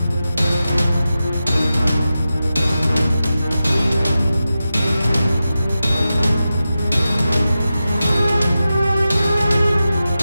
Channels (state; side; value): inverted; both; correlation -0.93